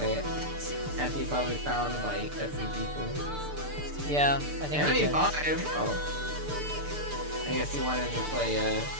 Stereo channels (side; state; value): left; late; 6.8 ms